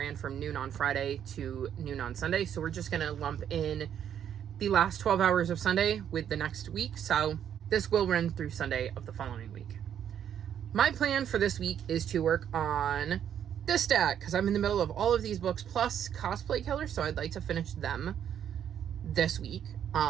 from noon on Friday to noon on Sunday, so we're just going to lump in the last 12 hours of Sunday with the next week, so this will run through Sunday of the following week. My plan for this week is to work on this stack, because I'm in the middle of all of these books, plus Cosplay Killer, so I'd like to finish them this week.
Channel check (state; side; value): quieter; left; 9.4 dB